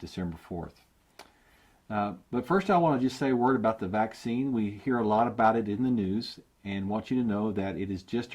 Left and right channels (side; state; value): both; identical; correlation 1.00